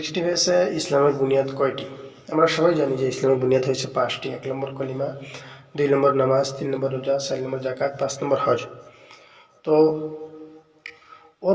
হয়েছে ইসলামের বুনিয়াদ কয়টি। আমরা সবাই জানি যে ইসলামের বুনিয়াদ হয়েছে 5টি। 1 নম্বর কলিমা, 2 নম্বর নামাজ, 3 নম্বর রোজা, 4 নম্বর যাকাত, 5 নম্বর হজ। তো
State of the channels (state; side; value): identical; both; correlation 1.00